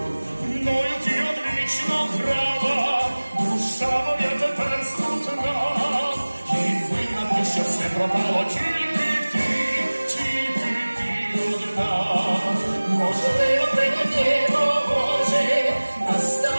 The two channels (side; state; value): both; inverted; correlation -1.00